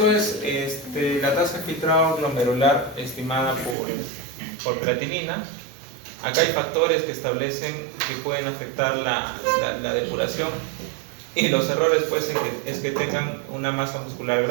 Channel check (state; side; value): drops out; left; at 3.8 s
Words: es la tasa de filtrado glomerular estimada por creatinina. Acá hay factores que establecen que pueden afectar la depuración, y los errores pues es que tengan una masa muscular